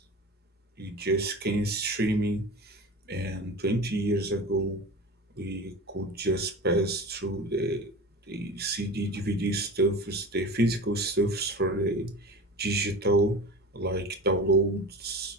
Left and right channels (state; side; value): normal; both; correlation 0.32